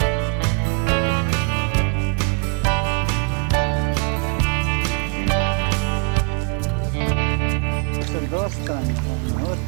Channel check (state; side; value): quieter; left; 35.2 dB